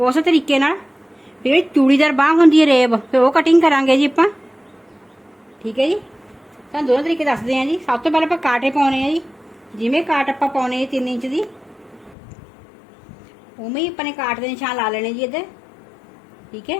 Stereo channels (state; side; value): drops out; right; at 12.2 s